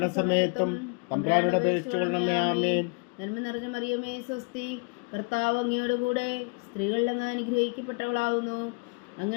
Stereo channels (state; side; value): quieter; right; 33.6 dB